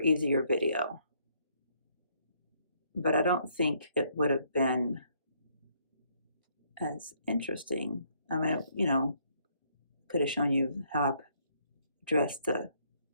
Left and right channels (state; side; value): inverted; both; correlation -0.69